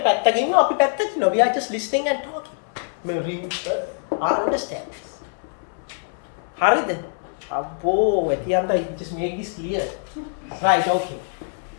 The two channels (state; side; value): silent; right; 63 dB below the other